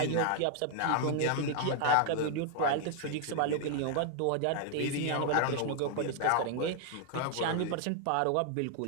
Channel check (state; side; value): different; both; correlation 0.00